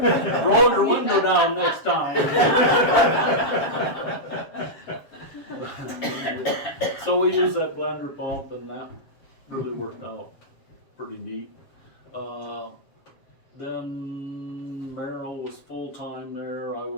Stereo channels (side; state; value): right; late; 7.3 ms